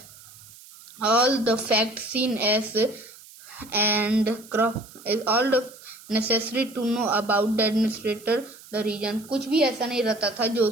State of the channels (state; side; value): noise; right; hiss, 21 dB below the sound